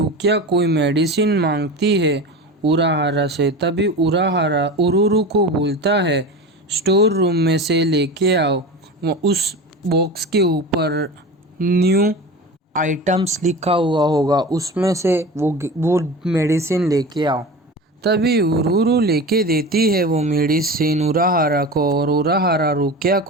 कोई मेडिसिन मांगती है उराहारा से। तभी उराहारा उरुरु को बोलता है, स्टोर रूम में से लेके आओ। उस बॉक्स के ऊपर न्यू आइटम्स लिखा हुआ होगा, उसमें से वो मेडिसिन लेके आओ। तभी उरुरु लेके देती है वो मेडिसिन उराहारा को और उराहारा रुकिया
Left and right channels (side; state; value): both; normal; correlation 0.31